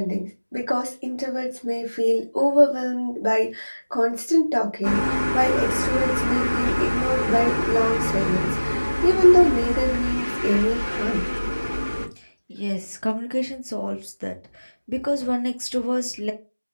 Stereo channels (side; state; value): both; inverted; correlation -1.00